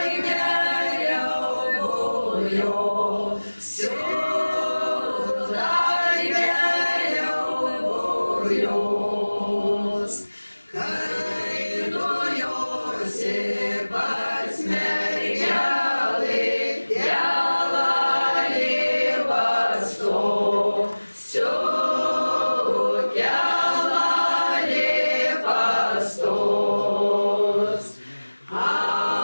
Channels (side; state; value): both; inverted; correlation -1.00